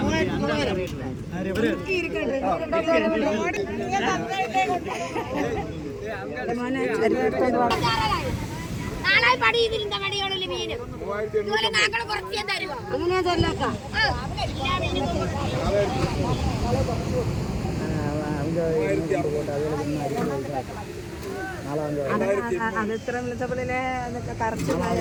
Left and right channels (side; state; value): both; identical; correlation 1.00